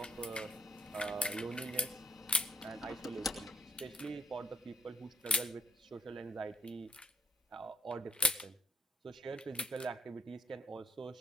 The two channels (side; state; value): both; normal; correlation 0.72